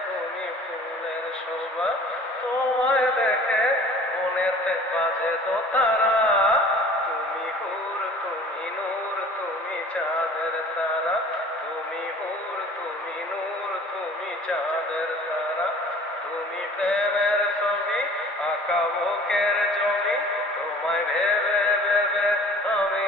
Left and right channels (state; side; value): normal; both; correlation 0.47